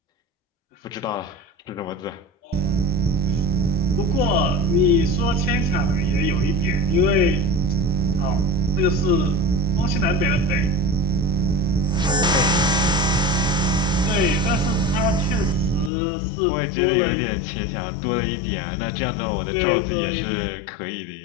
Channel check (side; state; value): right; drops out; at 15.9 s